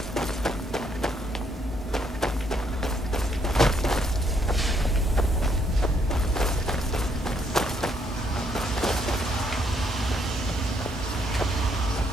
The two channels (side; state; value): both; normal; correlation 0.71